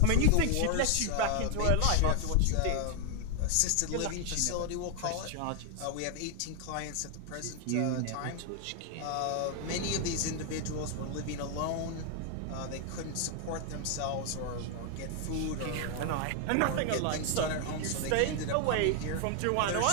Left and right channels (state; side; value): different; both; correlation 0.00